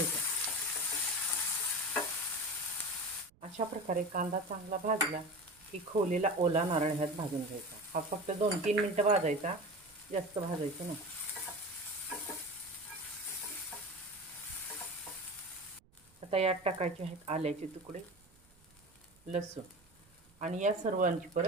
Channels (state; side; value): noise; right; rumble, 29 dB below the sound